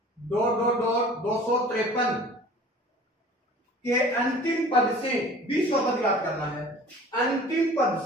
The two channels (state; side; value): normal; both; correlation 0.46